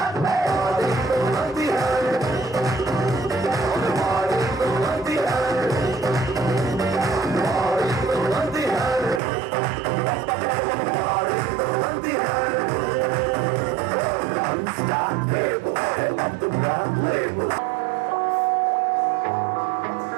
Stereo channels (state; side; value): drops out; left; at 9.2 s